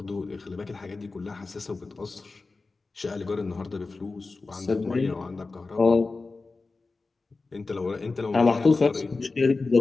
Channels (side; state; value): right; quieter; 3.8 dB